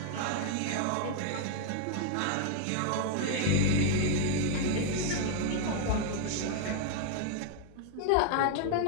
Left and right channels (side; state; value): both; different; correlation 0.00